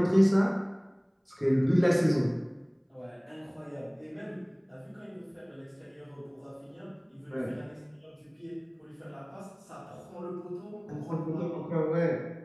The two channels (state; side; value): identical; both; correlation 1.00